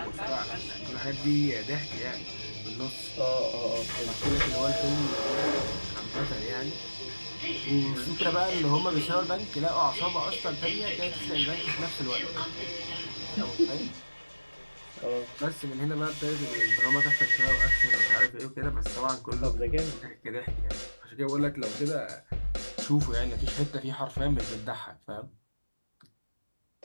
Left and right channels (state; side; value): inverted; both; correlation -1.00